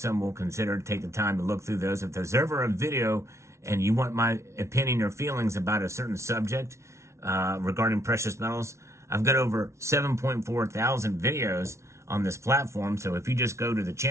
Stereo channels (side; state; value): left; late; 0.13 ms